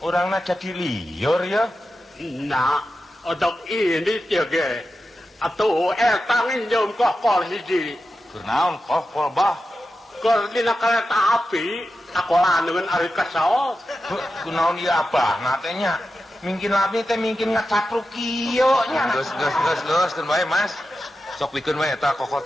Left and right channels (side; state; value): both; normal; correlation 0.91